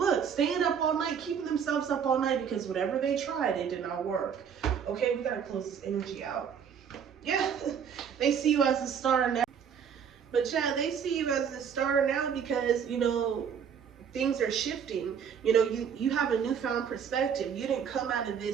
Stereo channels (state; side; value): quieter; left; 7.5 dB